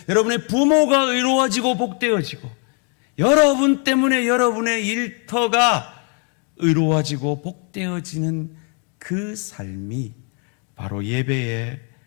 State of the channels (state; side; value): quieter; right; 37.3 dB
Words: 여러분의 부모가 의로워지고 복되어지고 여러분 때문에 여러분의 일터가 의로워지고 복되어지는 그 삶이 바로 예배의